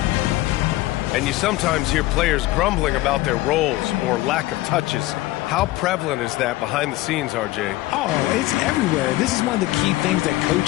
And you sometimes hear players grumbling about their roles or lack of touches. How prevalent is that behind the scenes, RJ? Oh, it's everywhere. This is one of the key things that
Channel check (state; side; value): quieter; right; 17.7 dB